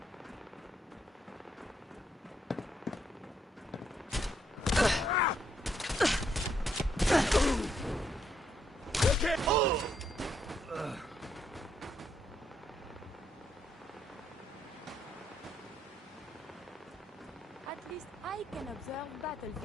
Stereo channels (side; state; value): both; normal; correlation 0.75